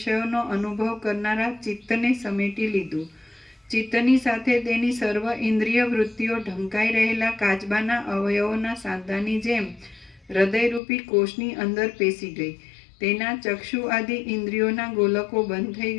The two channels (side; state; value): right; drops out; at 10.8 s